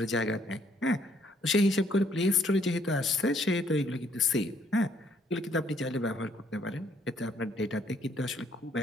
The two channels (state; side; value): normal; both; correlation 0.67